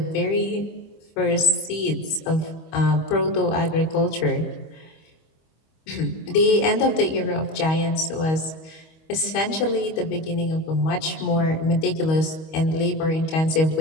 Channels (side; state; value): right; late; 25 ms